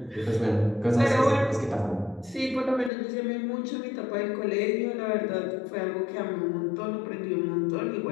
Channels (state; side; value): drops out; right; at 2.9 s